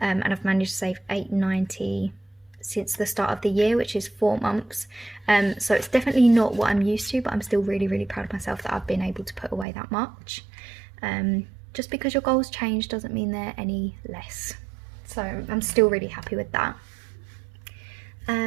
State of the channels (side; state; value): left; drops out; at 9.7 s